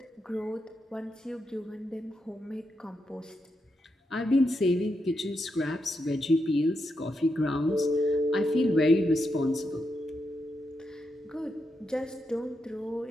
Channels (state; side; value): normal; both; correlation 0.84